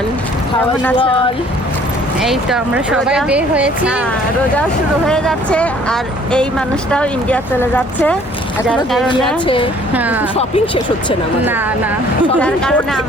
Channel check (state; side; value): normal; both; correlation 0.57